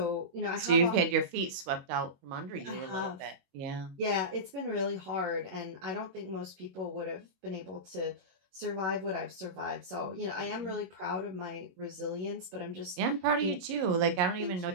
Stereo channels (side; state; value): left; late; 22 ms